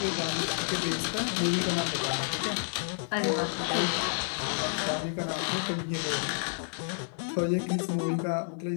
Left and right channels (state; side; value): silent; right; 58 dB below the other